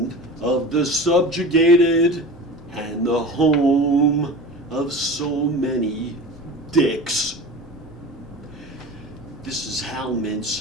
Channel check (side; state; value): both; normal; correlation 0.34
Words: of the subjugated and the home of so many dicks. This is Hal